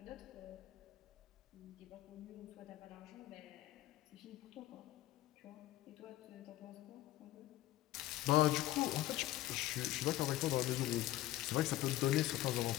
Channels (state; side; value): quieter; right; 15.5 dB